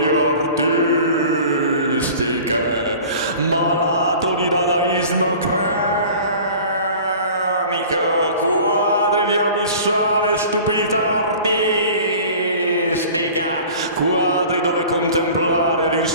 artistiche, malato di dadaismo cranico, quadri di abissale stupidità artistica. mistica, quadri dove contemplare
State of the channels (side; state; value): both; inverted; correlation -0.43